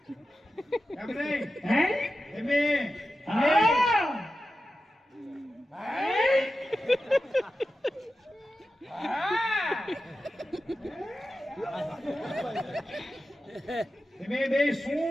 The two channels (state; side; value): normal; both; correlation 0.92